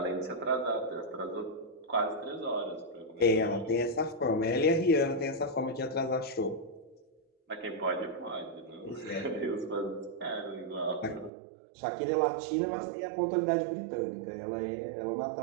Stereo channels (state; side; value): drops out; left; at 11.3 s